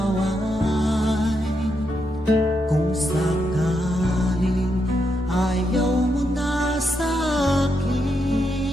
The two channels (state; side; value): normal; both; correlation 0.82